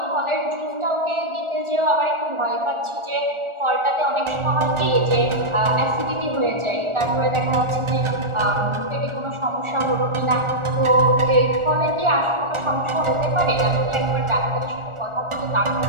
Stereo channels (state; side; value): late; left; 1.4 ms